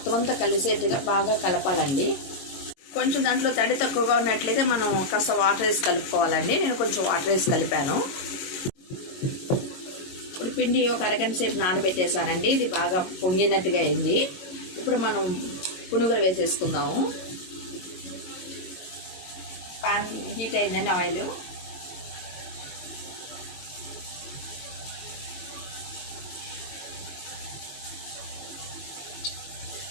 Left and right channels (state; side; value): late; right; 22 ms